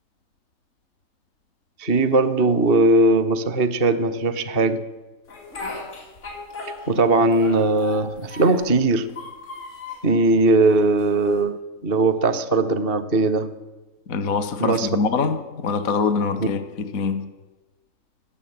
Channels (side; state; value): right; late; 2.7 ms